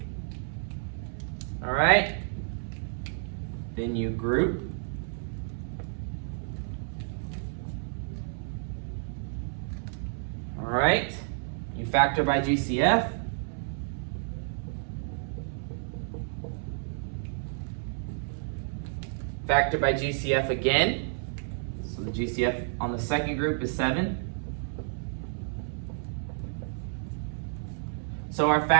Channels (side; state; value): left; silent; 58 dB below the other